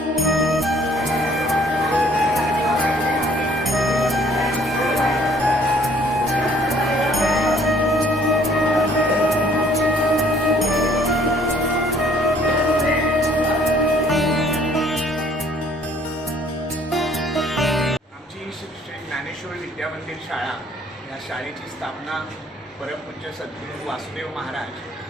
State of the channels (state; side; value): normal; both; correlation 0.59